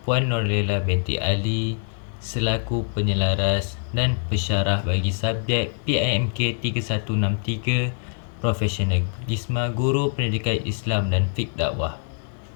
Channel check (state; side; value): silent; right; 63 dB below the other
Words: Puan Nurlela binti Ali selaku penyelaras dan pensyarah bagi subjek PIMK 3163 Profesionalisme Guru Pendidikan Islam dan Fiqh Dakwah.